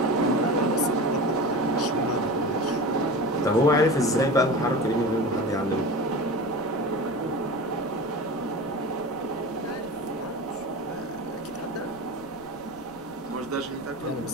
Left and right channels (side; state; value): left; noise; rumble, 24 dB below the sound